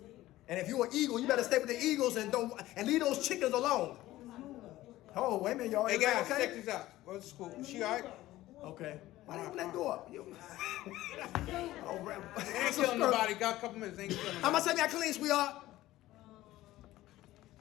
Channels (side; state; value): right; quieter; 16.1 dB